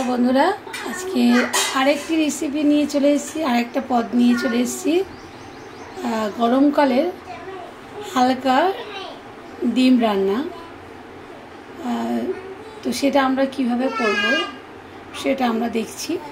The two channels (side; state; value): both; identical; correlation 1.00